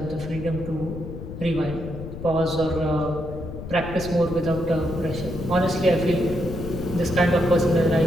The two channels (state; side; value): noise; left; rumble, 9 dB below the sound